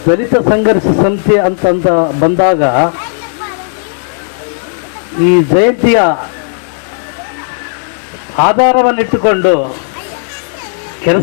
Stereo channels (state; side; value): silent; right; digital silence